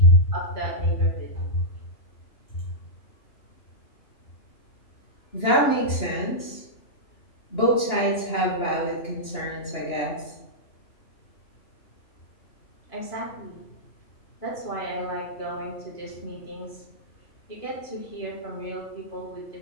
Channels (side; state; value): right; late; 2.9 ms